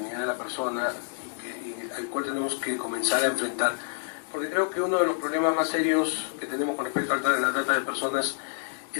de la persona y al cual tenemos que comenzar a enfrentar. Porque creo que uno de los problemas más serios que tenemos con respecto a la trata de personas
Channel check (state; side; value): silent; right; digital silence